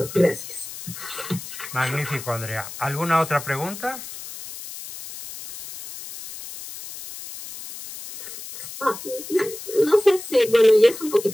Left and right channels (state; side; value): noise; left; hiss, 12 dB below the sound